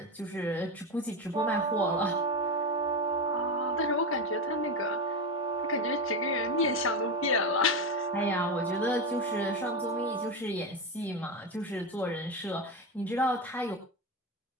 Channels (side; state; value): both; normal; correlation 0.15